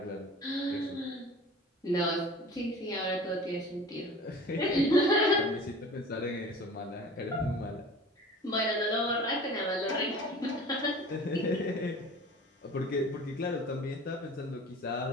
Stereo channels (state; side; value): normal; both; correlation 0.41